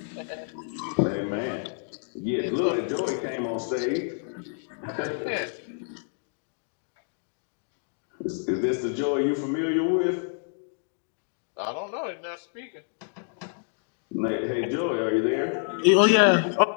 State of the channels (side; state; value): right; silent; digital silence